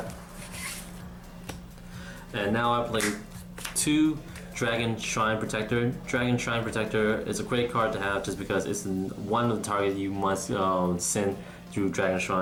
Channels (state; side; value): identical; both; correlation 1.00